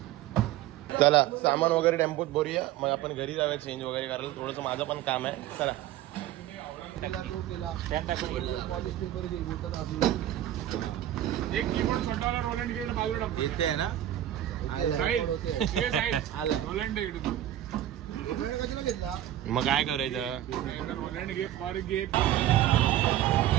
चला सामान वगैरे टेम्पोत भरूया मग आपण घरी जाऊया चेंज वगैरे करायला. थोडंसं माझं पण काम आहे. चला एक कीबोर्ड छोटा वाला रोलंड गेट बाजूला इथे आहे ना. रोलंड मग काय करायचं. रोलंड घे फॉर घे.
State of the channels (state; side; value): quieter; left; 12.8 dB